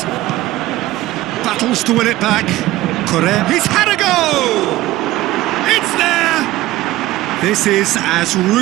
Battles to win it back. Correa. He's had a go! It's there! This is as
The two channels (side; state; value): left; quieter; 16.6 dB